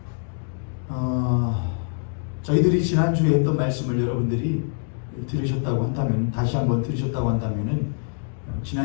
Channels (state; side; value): silent; right; digital silence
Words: 저희들이 지난주에 했던 말씀을 여러분들이 들으셨다고 한다면, 다시 한번 들으셨다고 한다면은